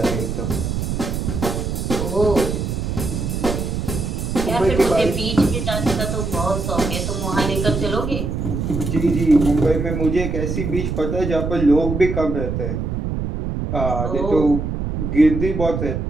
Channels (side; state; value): right; noise; rumble, 2 dB below the sound